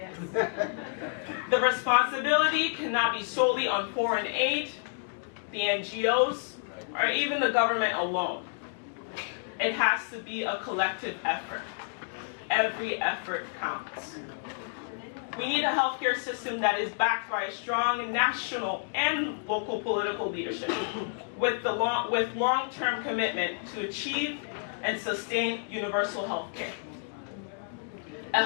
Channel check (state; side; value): silent; right; digital silence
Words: The responsibility cannot be solely on foreign aid, the NGOs, or even the government alone. It has to be a collective effort. Every effort counts. We need a healthcare system that is backed by a strong national and local political leadership with long-term commitment to achieve and sustain universal health care. A